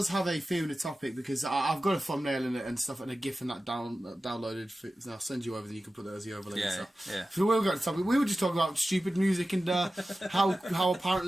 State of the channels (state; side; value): normal; both; correlation 0.94